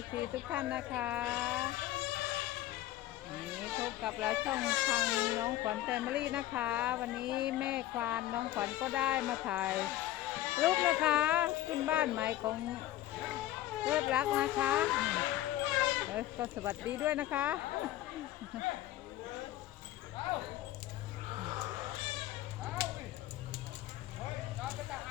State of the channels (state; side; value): quieter; right; 14.6 dB